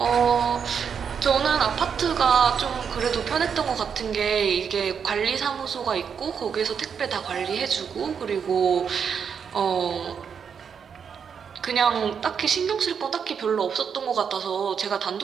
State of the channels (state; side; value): quieter; left; 6.9 dB